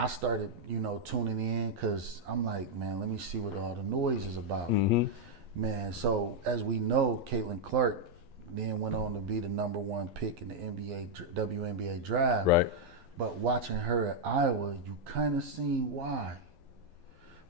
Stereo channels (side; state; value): left; late; 12 ms